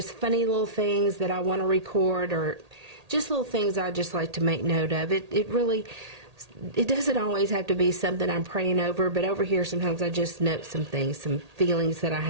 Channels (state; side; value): late; left; 1.8 ms